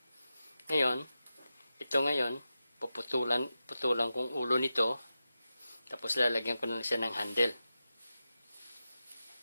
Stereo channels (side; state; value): both; inverted; correlation -0.91